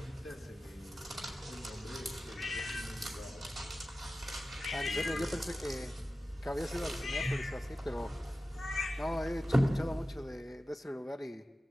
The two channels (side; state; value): both; normal; correlation 0.94